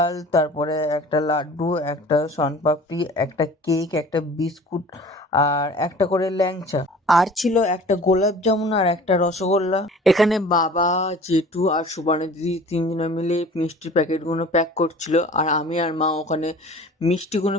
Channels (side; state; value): both; normal; correlation 0.45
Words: তারপরে একটা লাড্ডু, একটা শনপাপড়ি, একটা কেক, একটা বিস্কুট, আর একটা করে ল্যাংচা, আর ছিল একটা গোলাপ জামুন আর একটা রসগোল্লা। এখানে বাবা, জেঠু আর সুবর্ণা দিদি তিনজনে মিলে মিষ্টির প্যাকেটগুলো প্যাক করছিল, আর আমি আর মা ওখানে মিষ্টিগুলো